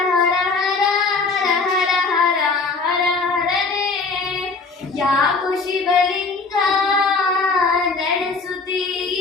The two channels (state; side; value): quieter; right; 4.1 dB